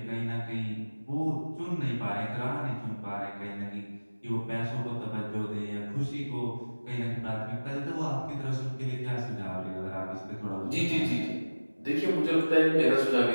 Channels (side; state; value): both; inverted; correlation -1.00